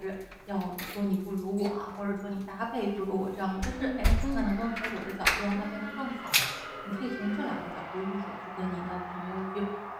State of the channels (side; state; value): both; identical; correlation 1.00